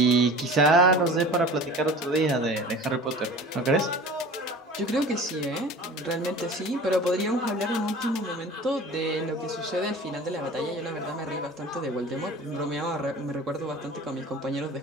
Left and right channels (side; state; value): both; normal; correlation 0.40